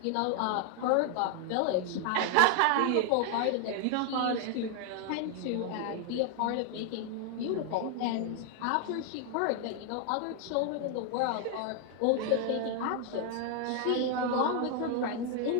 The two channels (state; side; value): different; both; correlation 0.00